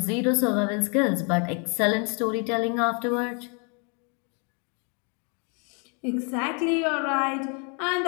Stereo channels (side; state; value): right; quieter; 36.2 dB